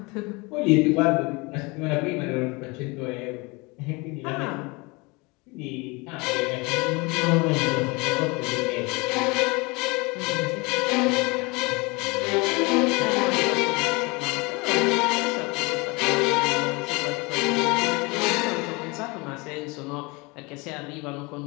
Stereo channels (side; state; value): right; quieter; 26.4 dB